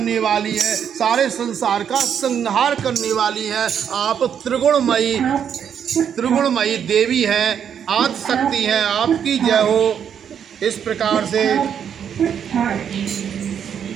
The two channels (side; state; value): left; quieter; 8.3 dB